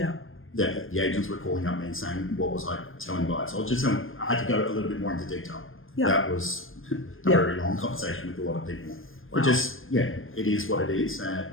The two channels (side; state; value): right; late; 0.59 ms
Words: The agents were calling up me and saying, what was I telling buyers? I was just telling, I had to go a little bit more into detail. Yeah. That was a very long conversation with a lot of people. Wow. But just, it is what it is.